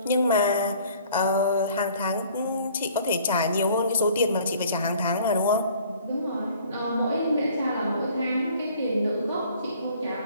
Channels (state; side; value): inverted; both; correlation -0.54